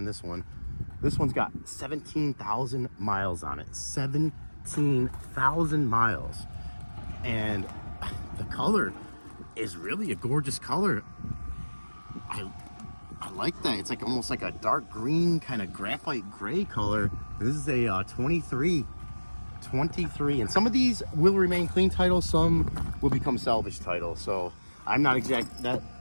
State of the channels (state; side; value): inverted; both; correlation -1.00